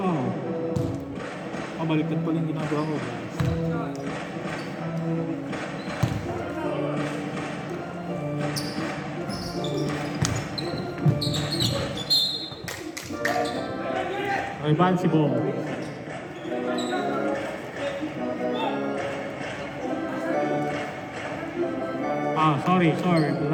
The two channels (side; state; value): both; identical; correlation 1.00